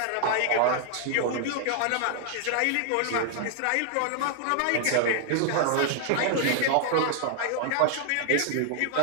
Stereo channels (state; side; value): different; both; correlation 0.00